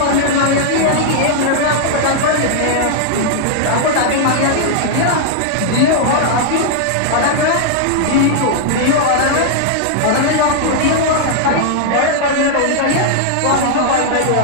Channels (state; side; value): different; both; correlation -0.01